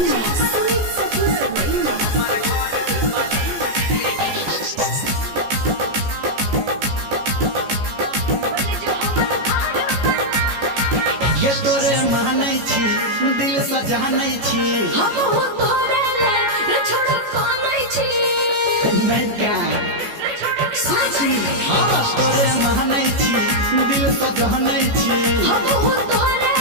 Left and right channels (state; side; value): late; left; 14 ms